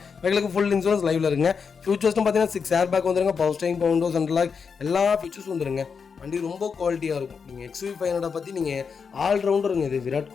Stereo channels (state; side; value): quieter; right; 5.9 dB